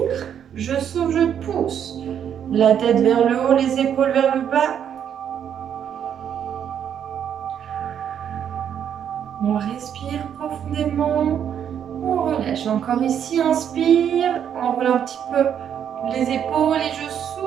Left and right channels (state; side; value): quieter; left; 8.9 dB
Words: je souffle, je pousse. La tête vers le haut, les épaules vers le bas. On respire profondément. On relâche. Encore ici, inspire. On enroule un petit peu les épaules et je